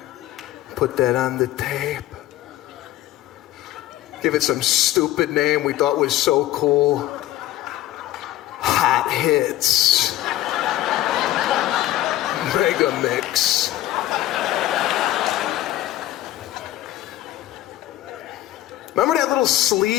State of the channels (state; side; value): quieter; right; 14.3 dB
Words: Put that on the tape. Give it some stupid name we thought was so cool. Hot Hits. Mega Mix. Remember that little